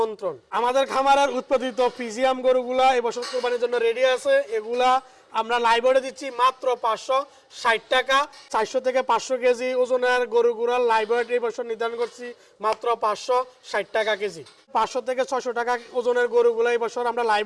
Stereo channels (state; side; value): identical; both; correlation 1.00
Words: আমাদের খামারের উৎপাদিত ফিজিয়াম গরুগুলা এবছর কুরবানির জন্য রেডি আছে। এগুলা আমরা লাইভে দিচ্ছি মাত্র 560 টাকা। 400 থেকে 500 কেজি ওজনের গরুগুলার লাইভ ওয়েট এই বছর নির্ধারণ করছি মাত্র 560 টাকা কেজি। 500 থেকে 600 টাকা ওজনের গরুগুলো এই বছর আমরা